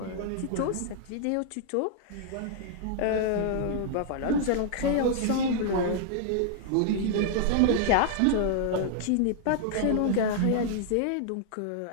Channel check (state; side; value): different; both; correlation -0.01